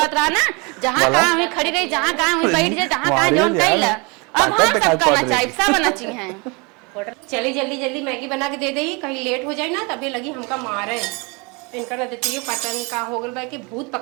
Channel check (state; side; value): quieter; left; 29.5 dB